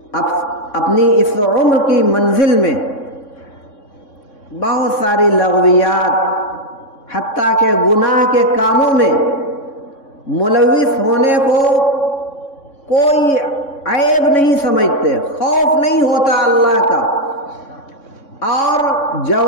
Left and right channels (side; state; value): right; late; 3.6 ms